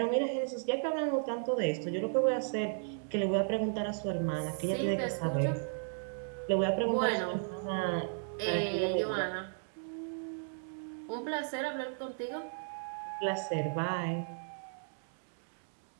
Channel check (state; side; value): silent; left; digital silence